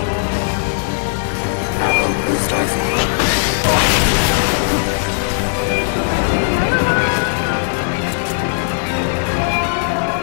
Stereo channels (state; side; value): silent; right; digital silence